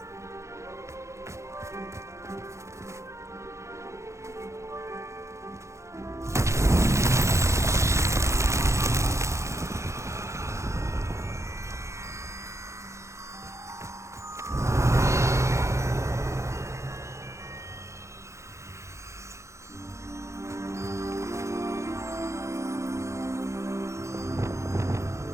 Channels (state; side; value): late; left; 0.14 ms